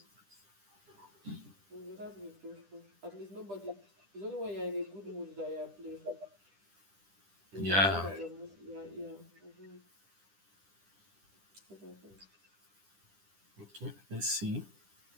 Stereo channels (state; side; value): late; left; 10 ms